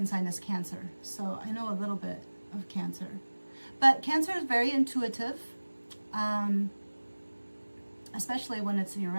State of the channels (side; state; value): both; inverted; correlation -1.00